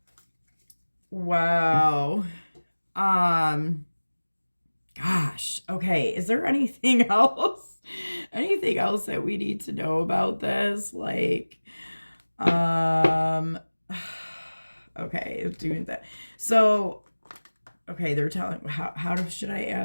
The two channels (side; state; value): both; inverted; correlation -1.00